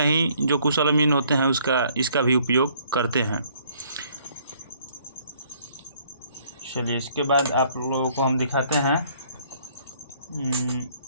जो कुशल अमीन होते हैं इसका भी उपयोग करते हैं। चलिए इसके बाद आप लोगों को हम दिखाते हैं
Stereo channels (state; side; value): inverted; both; correlation -0.62